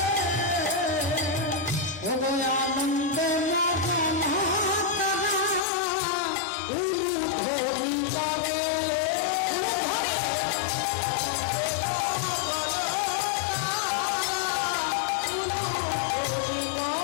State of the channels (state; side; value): drops out; right; at 5.6 s